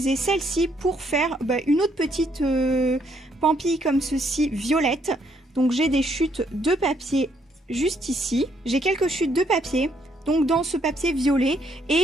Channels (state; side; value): normal; both; correlation 0.71